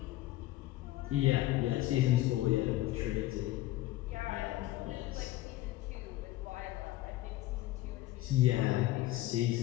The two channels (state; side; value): quieter; right; 16.0 dB